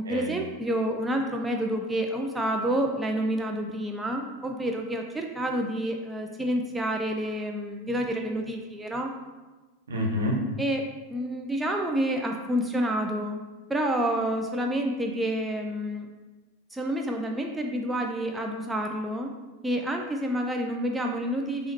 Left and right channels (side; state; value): both; normal; correlation 0.55